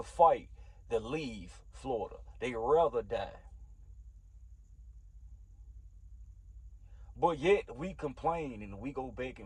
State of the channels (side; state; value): both; identical; correlation 1.00